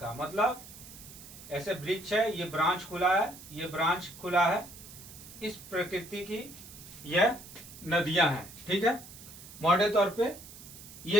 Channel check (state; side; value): noise; right; hiss, 16 dB below the sound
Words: मतलब ऐसे वृक्ष है, ये ब्रांच खुला है, ये ब्रांच खुला है, इस प्रकृति की यह नदियां हैं। ठीक है। मोटे तौर पे